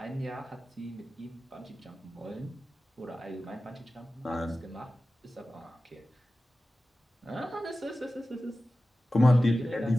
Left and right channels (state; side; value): normal; both; correlation 0.95